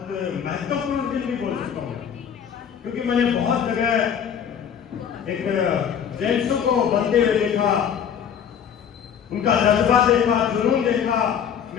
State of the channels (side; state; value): right; quieter; 8.2 dB